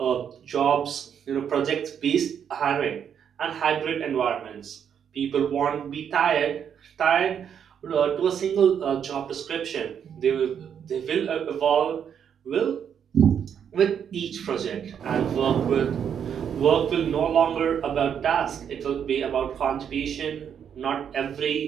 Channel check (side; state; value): left; quieter; 8.2 dB